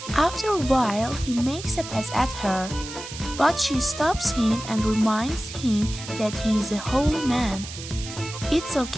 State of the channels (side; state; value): right; noise; hiss, 11 dB below the sound